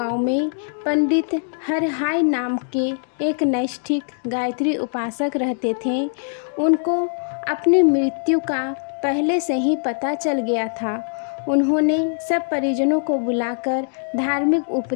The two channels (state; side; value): silent; right; digital silence